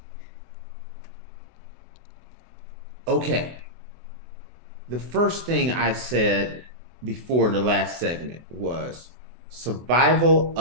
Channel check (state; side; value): late; left; 24 ms